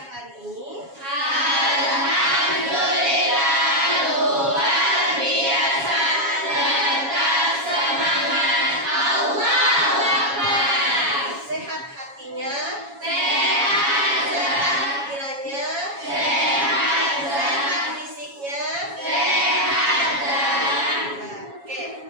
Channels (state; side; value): late; left; 7.2 ms